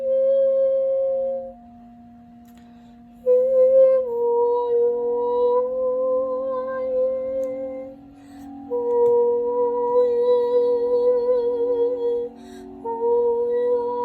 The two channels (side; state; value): both; identical; correlation 1.00